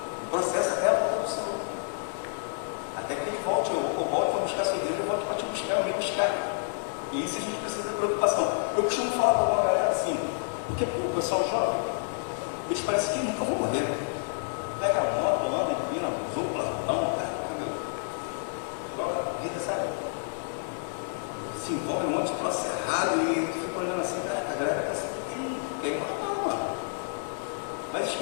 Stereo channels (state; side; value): silent; right; digital silence